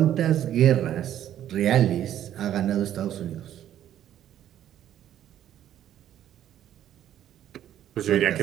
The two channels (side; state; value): left; quieter; 11.3 dB